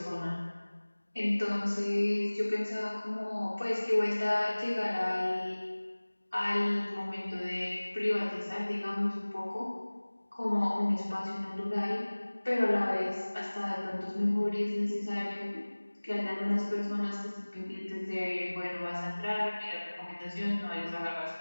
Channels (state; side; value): inverted; both; correlation -1.00